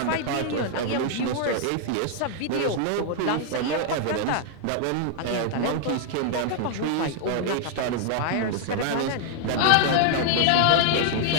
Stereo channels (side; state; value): both; different; correlation 0.00